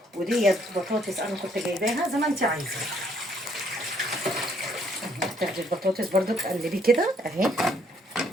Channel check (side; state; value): both; normal; correlation 0.67